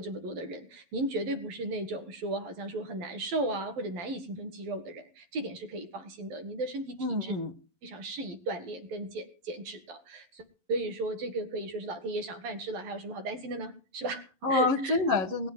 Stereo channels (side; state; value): left; late; 11 ms